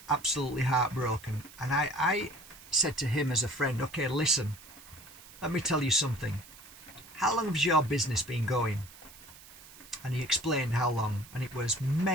absolutely heartbroken, and I said to him as a friend, okay, listen, let me tell you something. How long has your business been going? And he explained how long, and it was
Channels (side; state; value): right; noise; hiss, 20 dB below the sound